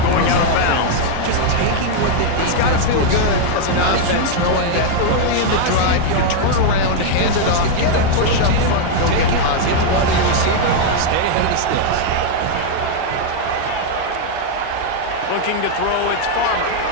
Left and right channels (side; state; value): both; different; correlation 0.00